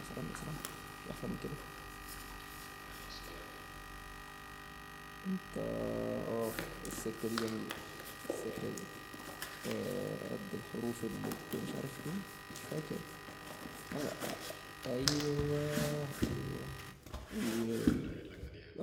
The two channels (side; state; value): both; identical; correlation 1.00